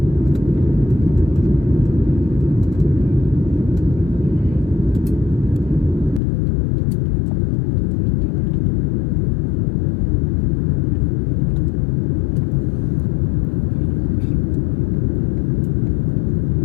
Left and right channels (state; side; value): drops out; right; at 6.2 s